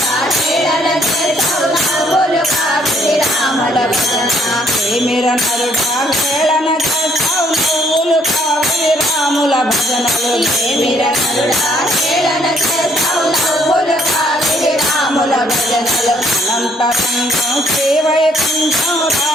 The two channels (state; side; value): normal; both; correlation 0.66